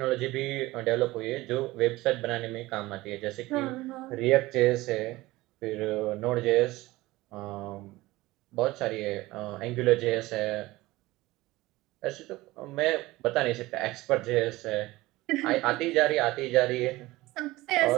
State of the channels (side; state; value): left; quieter; 19.1 dB